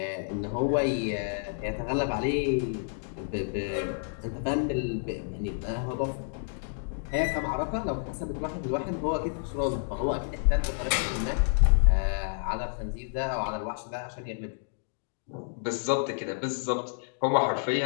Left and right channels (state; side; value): silent; right; digital silence